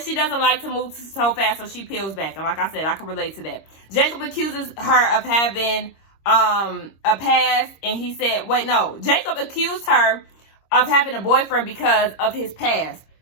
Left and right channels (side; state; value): right; late; 26 ms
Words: she doesn't like to move so fast, so she peels back. And like I said, I can relate to that. Jacob accuses her of having a past, and he said, wait, no. Jacob accused her of having a boyfriend because of his past.